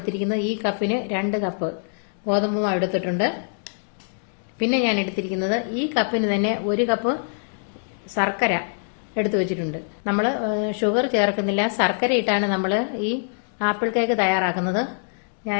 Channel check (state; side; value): silent; right; 61 dB below the other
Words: ഈ കപ്പിന് 2 കപ്പ് ഗോതമ്പ് മാവ് എടുത്തിട്ടുണ്ട്. പിന്നെ ഞാൻ എടുത്തിരിക്കുന്നത് ഈ കപ്പിന് തന്നെ 1 കപ്പ് ശർക്കര എടുത്തു വെച്ചിട്ടുണ്ട്. നമ്മൾ ഷുഗർ ചേർക്കുന്നില്ല, ശർക്കര ഇട്ടാണ് നമ്മൾ ഈ ആപ്പിൾ കേക്ക് തയ്യാറാക്കുന്നത്.